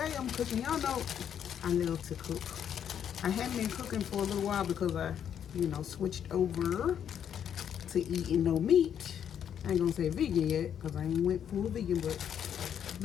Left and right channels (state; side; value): quieter; right; 8.9 dB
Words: I'm cooking. Y'all know I love to cook. I haven't been cooking for a little while because I, switched over to eating no meat. I ain't gonna say vegan yet because I ain't went full vegan, but